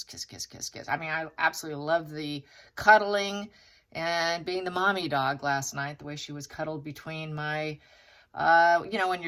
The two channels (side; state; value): both; identical; correlation 1.00